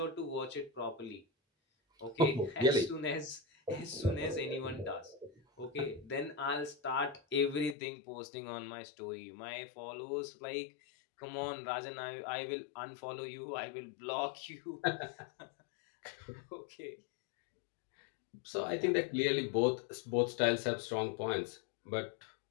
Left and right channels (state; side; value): drops out; right; at 7.8 s